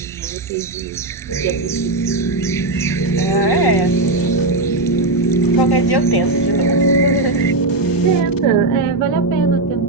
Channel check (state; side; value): quieter; left; 3.0 dB